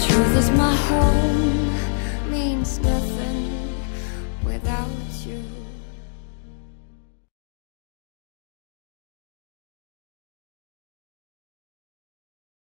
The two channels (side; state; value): right; silent; digital silence